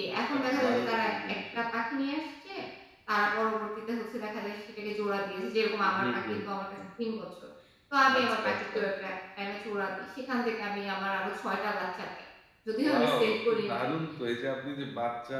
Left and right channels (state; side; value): identical; both; correlation 1.00